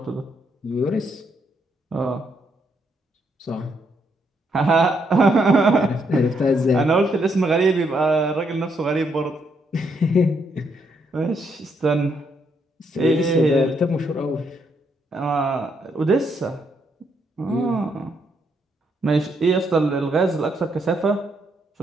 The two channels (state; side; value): normal; both; correlation 0.75